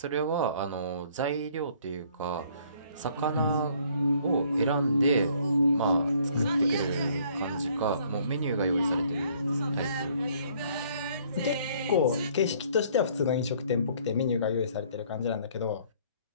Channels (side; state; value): both; inverted; correlation -0.61